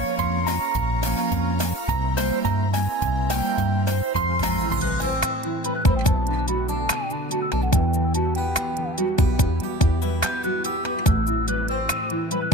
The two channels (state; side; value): late; right; 1.2 ms